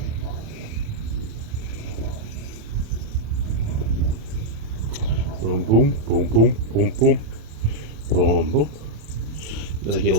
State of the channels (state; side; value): late; left; 27 ms